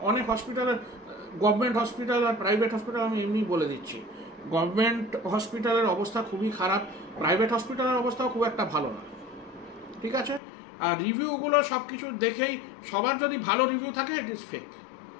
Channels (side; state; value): right; drops out; at 10.4 s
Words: অনেক হসপিটালের, গভর্নমেন্ট হসপিটাল আর প্রাইভেট হসপিটাল, আমি এমনি বলে দিচ্ছি, গভর্নমেন্ট হসপিটালের অবস্থা খুবই খারাপ, প্রাইভেট হসপিটালের অবস্থাও খুব একটা ভালো না, ঠিক আছে। আর রিভিউগুলো সব কিছু দেখেই, সবার যদি ভালো রিভিউ থাকে ইট ইজ ফেক,